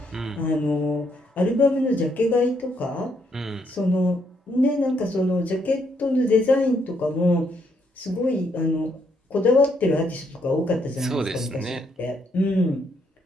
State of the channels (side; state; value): both; normal; correlation 0.73